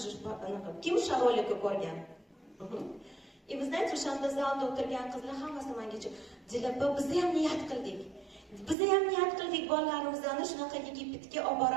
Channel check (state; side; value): drops out; left; at 8.8 s